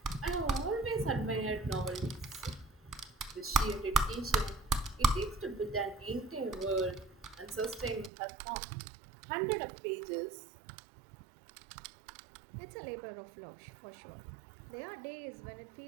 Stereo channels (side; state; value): left; drops out; at 8.1 s